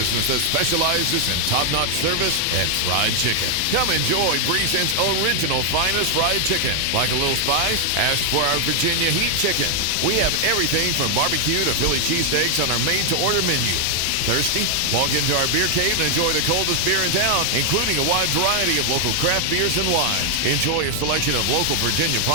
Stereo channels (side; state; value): both; different; correlation 0.00